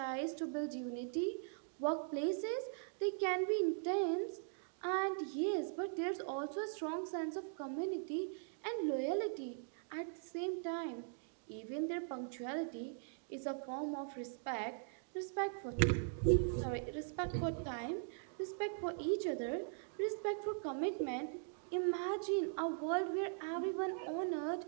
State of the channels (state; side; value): silent; left; digital silence